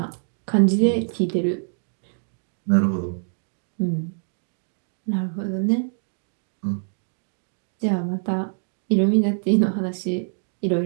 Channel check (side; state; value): left; silent; digital silence